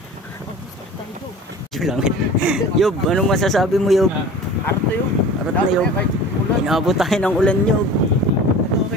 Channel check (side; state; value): both; normal; correlation 0.39